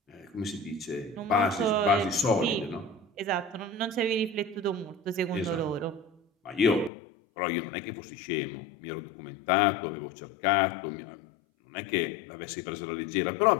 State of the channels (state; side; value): drops out; right; at 6.9 s